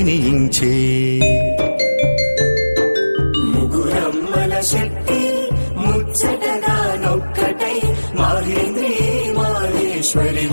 ముగురమ్మల శక్తి ముచ్చటగా నొక్కటై మాహేంద్రి మాహేశ్వరి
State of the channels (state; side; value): inverted; both; correlation -1.00